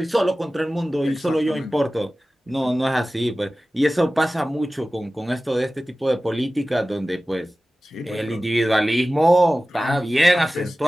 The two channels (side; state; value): both; normal; correlation 0.96